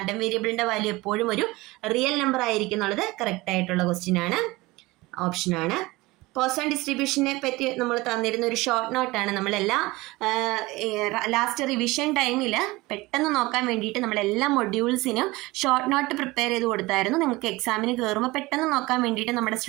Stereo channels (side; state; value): left; quieter; 21.2 dB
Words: വേരിയബിളിന്റെ വാല്യൂ എപ്പോഴും ഒരു റിയൽ നമ്പർ ആയിരിക്കും എന്നുള്ളത് കറക്റ്റ് ആയിട്ടുള്ള ക്വസ്റ്റ്യൻ ആണ്. ഓപ്ഷനാണ്. പോസൺ ഡിസ്ട്രിബ്യൂഷനെ പറ്റി നമ്മൾ തന്നിരുന്ന ഒരു ഷോർട്ട് നോട്ടാണ്. നമ്മളെല്ലാം ലാസ്റ്റ് റിവിഷൻ ടൈമിൽ പെട്ടെന്ന് നോക്കാൻ വേണ്ടിയിട്ട് നമ്മളെല്ലാ മൊഡ്യൂൾസിനും ഷോർട്ട് നോട്ട് പ്രിപ്പയർ ചെയ്ത് കൊടുത്തായിരുന്നു. നിങ്ങൾക്ക് എക്സാമിന് കയറുമ്പോൾ പെട്ടെന്ന് നോക്കാൻ വേണ്ടിയിട്ട് നമ്മുടെ